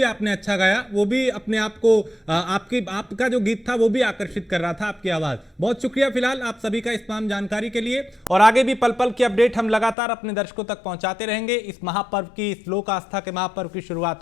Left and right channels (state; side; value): drops out; right; at 10.0 s